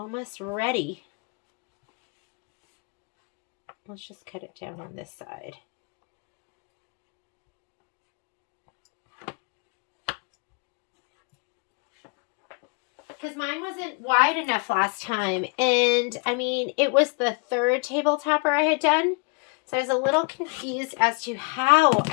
ready. Let's just cut it down on this side. Because mine wasn't wide enough last time. And, I mean, it was the 3rd table topper I had done. So I was a little confused as to how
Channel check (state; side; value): quieter; right; 32.7 dB